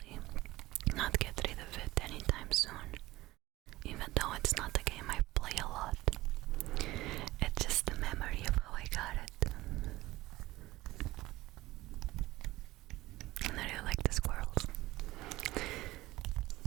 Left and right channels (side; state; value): left; quieter; 18.1 dB